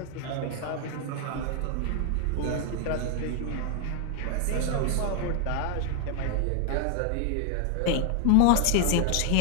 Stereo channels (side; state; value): both; different; correlation 0.00